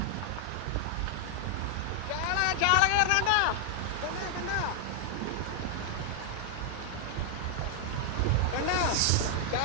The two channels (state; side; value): different; both; correlation 0.00